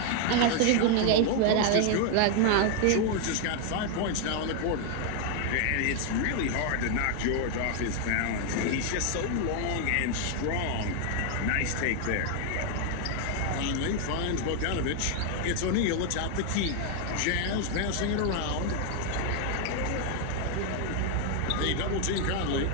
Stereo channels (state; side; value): different; both; correlation 0.00